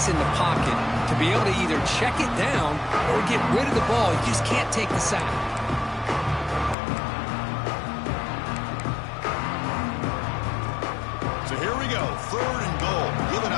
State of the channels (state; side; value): drops out; right; at 6.8 s